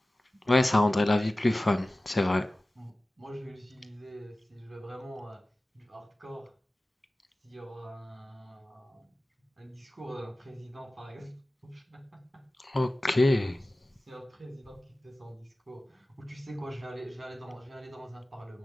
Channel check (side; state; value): both; normal; correlation 0.96